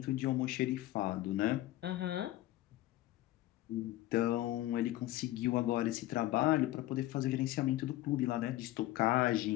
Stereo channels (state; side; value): quieter; right; 15.9 dB